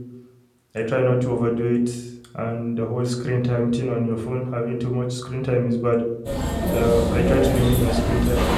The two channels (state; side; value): identical; both; correlation 1.00